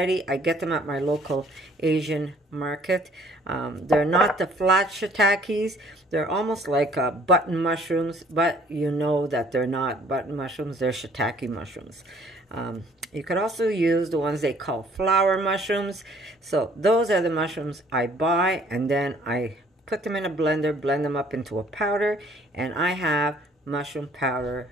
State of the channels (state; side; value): normal; both; correlation 0.58